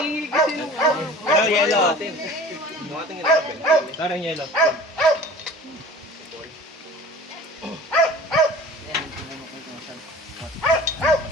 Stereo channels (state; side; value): normal; both; correlation 0.42